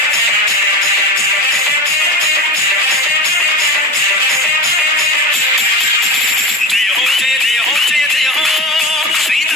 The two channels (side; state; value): both; normal; correlation 0.27